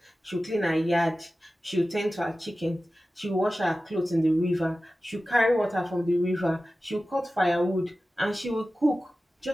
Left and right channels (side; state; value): both; normal; correlation 0.95